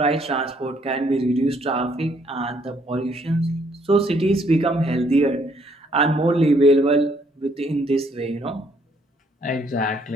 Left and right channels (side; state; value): both; normal; correlation 0.67